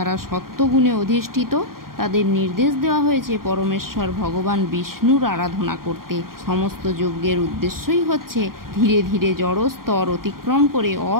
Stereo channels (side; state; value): left; late; 0.92 ms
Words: সত্ত্বগুণে অধিষ্ঠিত, তাদের নির্দেশ দেওয়া হয়েছে পরমেশ্বর ভগবান বিষ্ণুর আরাধনা করতে। সমস্ত যজ্ঞের উদ্দেশ্যই হচ্ছে ধীরে ধীরে জড় স্তর অতিক্রম করে